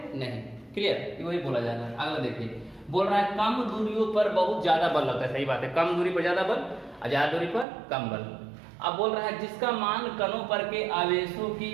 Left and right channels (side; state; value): left; drops out; at 7.7 s